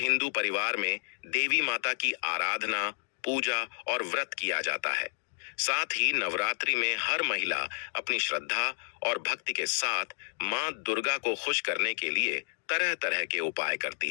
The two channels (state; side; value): silent; right; digital silence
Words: परिवार में देवी माता की आराधना, पूजा और व्रत किया जाता है। साथ ही नवरात्रि में हर महिला अपनी श्रद्धा और भक्ति के साथ मां दुर्गा को खुश करने के लिए तरह तरह के उपाय